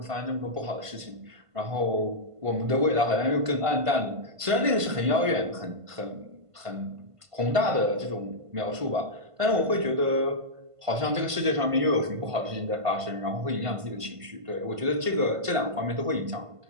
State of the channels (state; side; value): late; left; 1.5 ms